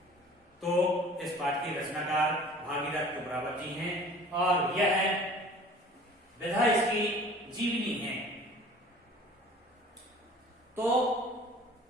तो इस पाठ के रचनाकार भागीरथ कुमरावत जी हैं और यह विधा इसकी जीवनी है। तो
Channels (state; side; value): normal; both; correlation 0.46